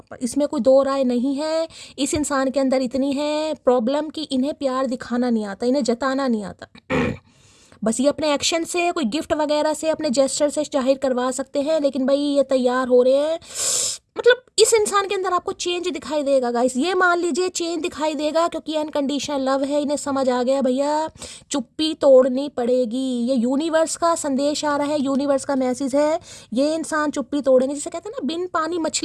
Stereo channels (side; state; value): both; identical; correlation 1.00